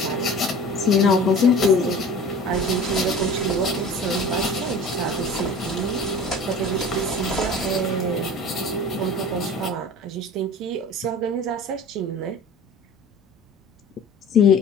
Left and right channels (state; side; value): normal; both; correlation 0.41